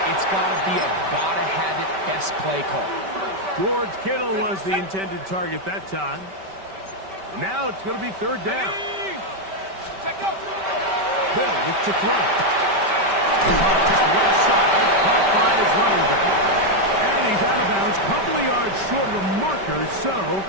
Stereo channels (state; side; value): late; left; 5.2 ms